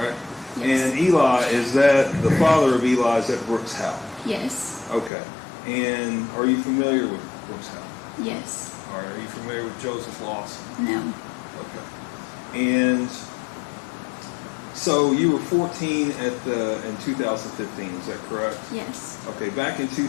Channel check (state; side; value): drops out; right; at 5.1 s